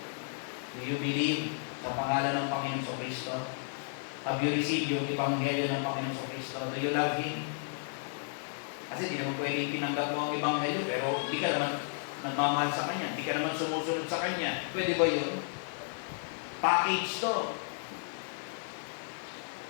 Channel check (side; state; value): right; silent; digital silence